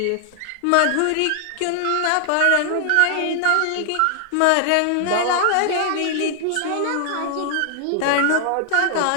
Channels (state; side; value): different; both; correlation 0.00